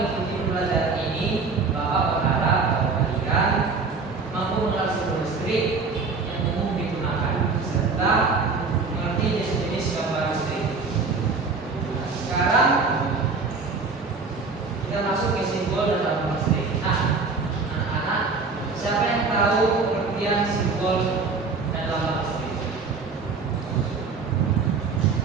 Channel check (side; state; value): left; quieter; 4.4 dB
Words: pembelajaran ini, Bapak berharap bahwa kalian mampu mengenal simbol listrik yang umum digunakan serta mengerti jenis-jenis gambar listrik. Sekarang kita masuk ke simbol dan lambang listrik. Nah, anak-anak, siapa yang tahu pengertian simbol dan lambang listrik?